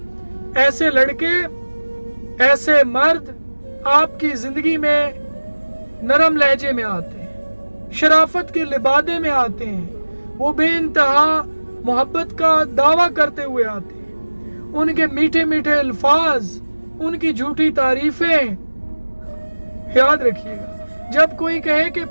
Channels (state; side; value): inverted; both; correlation -1.00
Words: ایسے لڑکے، ایسے مرد آپ کی زندگی میں نرم لہجے میں آتے ہیں، شرافت کے لبادے میں آتے ہیں، وہ بے انتہا محبت کا دعویٰ کرتے ہوئے آتے ہیں، ان کے میٹھے میٹھے الفاظ، ان کی جھوٹی تعریفیں۔ یاد رکھیے گا، جب کوئی کہے کہ